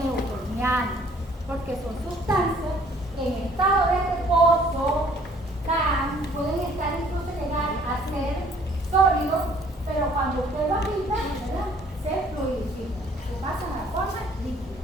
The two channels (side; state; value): both; normal; correlation 0.58